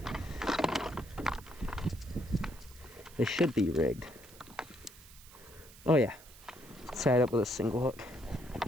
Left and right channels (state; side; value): noise; right; hiss, 20 dB below the sound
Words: They should be rigged. Oh yeah. It's tied up with a single hook.